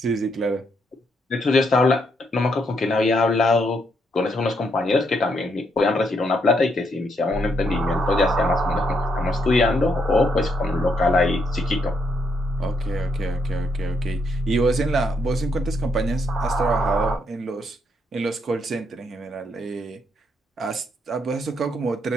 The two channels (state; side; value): normal; both; correlation 0.76